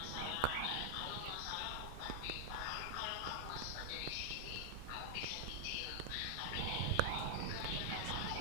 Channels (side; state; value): both; different; correlation 0.00